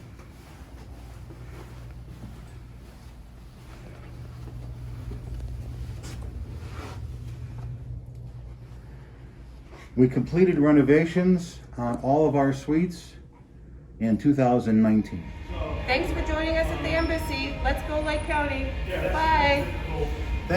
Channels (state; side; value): identical; both; correlation 1.00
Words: We completed renovations on all of our suites in 2019. Thanks for joining us at the Embassy. Let's go Lake County. Bye.